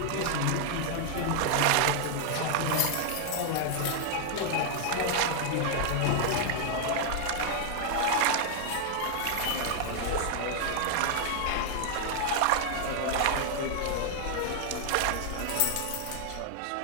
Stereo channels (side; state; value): both; different; correlation 0.00